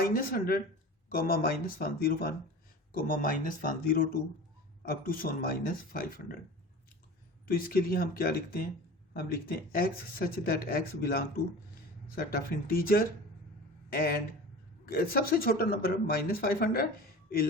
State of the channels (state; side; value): normal; both; correlation 0.36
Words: -101, -102 अप टू सोन -500। तो इसके लिए हम क्या लिखते हैं? हम लिखते हैं x such that x belong to set of integer and सबसे छोटा number -500